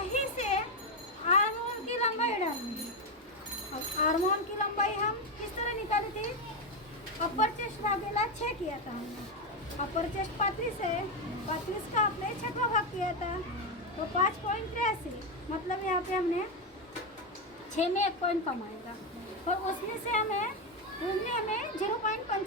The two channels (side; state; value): both; normal; correlation 0.08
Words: से आर्म होल की लंबाई डालनी है। अब आर्म होल की लंबाई हम किस तरह निकाली थी, अपर चेस्ट भागेला 6 किया था हमने। अपर चेस्ट 35 है, 35 का आपने 6वां भाग किया था, तो 5.83, मतलब यहाँ पे हमने 6 में 1 पॉइंट कम आएगा। और उसमें से हमें